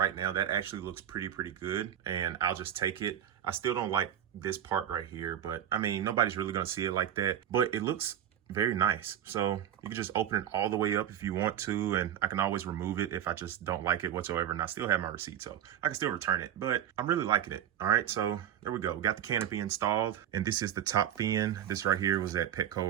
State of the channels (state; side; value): quieter; left; 10.4 dB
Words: now, that actually looks pretty good, and I'll just take it. I still don't like this part right here, but I mean, nobody's really gonna see it like that, but it looks very nice. So you can just open it all the way up if you want to, and I can always remove it if I just don't like it whatsoever, and I still have my receipt, so I can still return it, but I'm really liking it. All right, so there we go. We got the canopy installed, and this is the top fin. This right here was at Petco